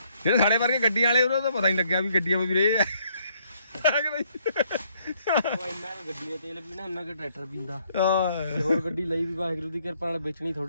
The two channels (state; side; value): inverted; both; correlation -0.69